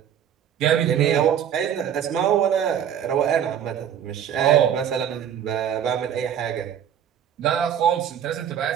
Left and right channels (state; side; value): quieter; left; 9.3 dB